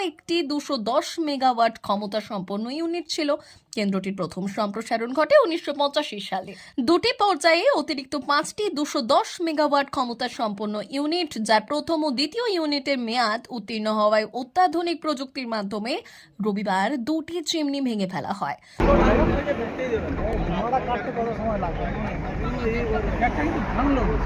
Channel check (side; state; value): both; identical; correlation 1.00